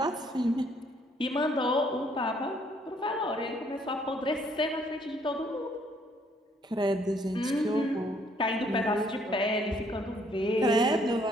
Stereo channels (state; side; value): normal; both; correlation 0.66